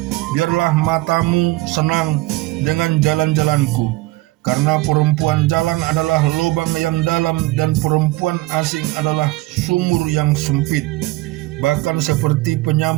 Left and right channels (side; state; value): left; quieter; 20.0 dB